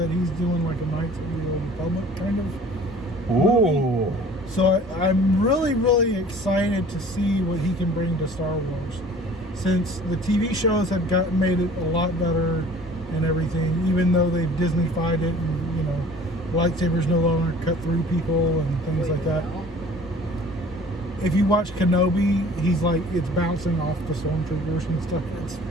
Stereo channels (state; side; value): normal; both; correlation 0.49